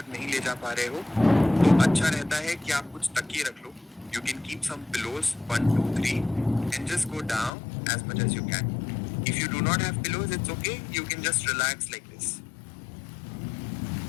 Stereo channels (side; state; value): right; drops out; at 7.5 s